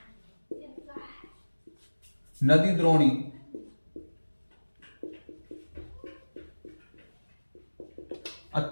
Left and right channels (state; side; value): inverted; both; correlation -1.00